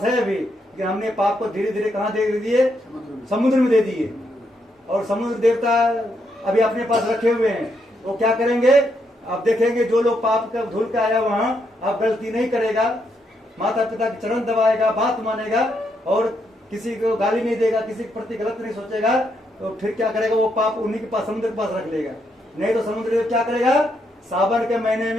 है अभी, लेकिन हमने पाप को धीरे धीरे कहाँ दे दिए? समुद्र में दे दिए। और समुद्र देवता अभी अपने पास रखे हुए हैं, वो क्या करेंगे? आप देखेंगे जो लोग पाप का धुल के आया वहां आप गलती नहीं करेगा, माता पिता के चरण दबाएगा, बात मानेगा और किसी को गाली नहीं देगा, किसी के प्रति गलत नहीं सोचेगा, तो फिर क्या करेगा? वो पाप उन्हीं के पास, समुद्र के पास रख लेगा। नहीं तो समुद्र क्या करेगा? सावन के महीने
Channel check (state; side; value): normal; both; correlation 0.78